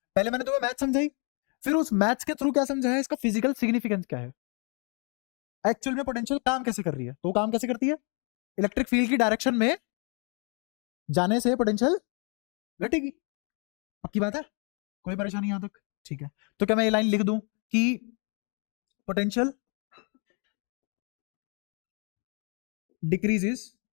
पहले मैंने तुम्हें मैथ समझाई, फिर उस मैथ्स के थ्रू क्या समझाया, इसका फिजिकल सिग्निफिकेंस क्या है, एक्चुअल में पोटेंशियल काम कैसे कर रही है। तो काम कैसे करती है, इलेक्ट्रिक फील्ड की डायरेक्शन में जाने से पोटेंशियल घटेगी, पक्की बात है, कोई परेशानी यहां तक, ठीक है। तो क्या मैं ये लाइन लिख दूं कि potential decreases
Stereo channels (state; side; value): quieter; right; 36.6 dB